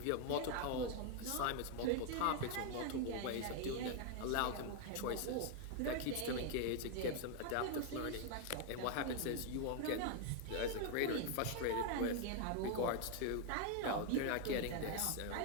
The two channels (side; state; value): both; different; correlation 0.00